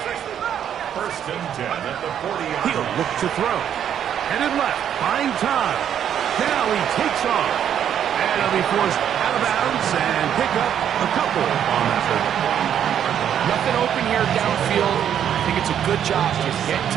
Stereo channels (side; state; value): left; quieter; 9.4 dB